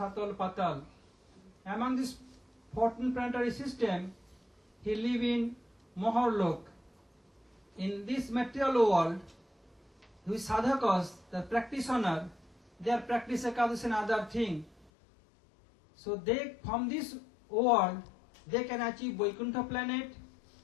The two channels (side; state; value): right; drops out; at 14.9 s